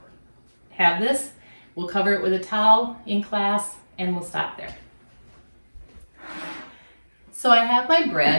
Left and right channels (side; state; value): both; inverted; correlation -1.00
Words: have this, we'll cover it with a towel in class, and we'll stop there. So I have my